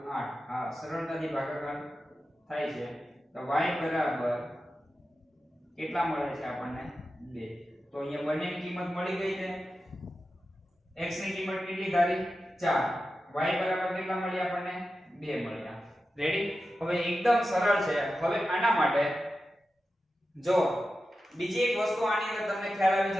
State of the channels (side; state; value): both; normal; correlation 0.92